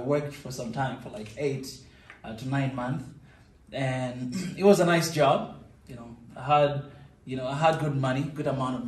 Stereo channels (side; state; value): both; identical; correlation 1.00